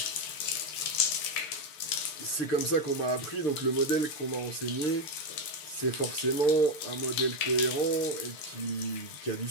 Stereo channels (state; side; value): late; right; 6.7 ms